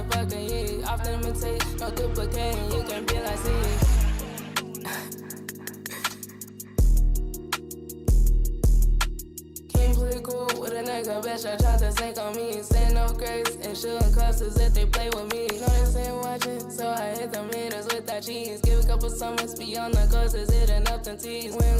heat. Often imitate, no duplicating, you can be like C. Can't play cool with a nigga, bitch, I tried to sink on me. Saying no grace and shooting clusters if they play with me. Know they ain't watching, so I hit them haters with that cheese. Give a couple summers beyond the coasters, hitting up them tees.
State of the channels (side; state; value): both; identical; correlation 1.00